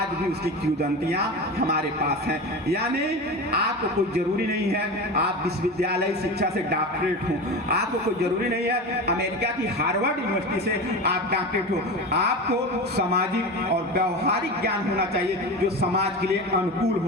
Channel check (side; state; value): both; normal; correlation 0.26